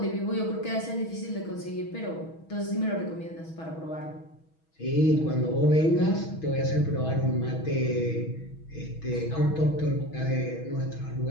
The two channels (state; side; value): late; right; 6.2 ms